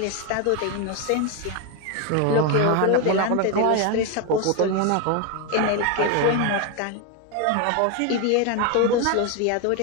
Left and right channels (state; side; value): different; both; correlation 0.02